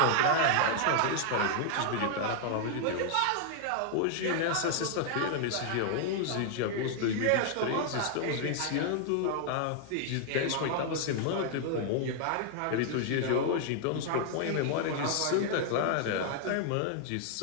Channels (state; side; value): different; both; correlation 0.00